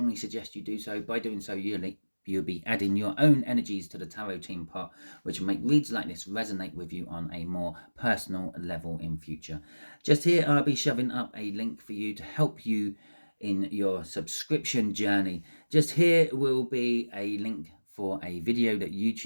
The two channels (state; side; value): inverted; both; correlation -1.00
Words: suggest you do so. By doing so, you'll be adding your own energies to the tarot team pot, which will make reads like this resonate with you on a more personal level in future. Just here, I'll be shoving up a link for you to help you in your subscription journey. Just here will be a link for a video that